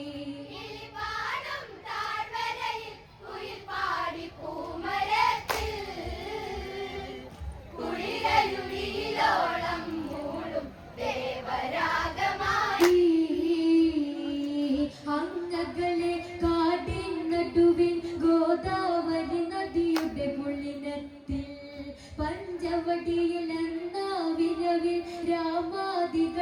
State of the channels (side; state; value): both; identical; correlation 1.00